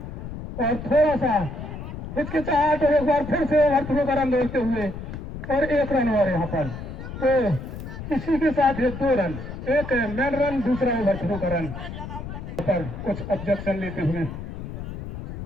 और थोड़ा सा हिचकिचाहट और एक बार फिर से ओवरथ्रो का रन दौड़ते हुए और 1 रन और यहाँ पर तो इसी के साथ है 2 रन, एक मैन रन दूसरा ओवरथ्रो का रन पर कुछ ऑब्जेक्शन लेते हुए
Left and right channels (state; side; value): noise; left; rumble, 9 dB below the sound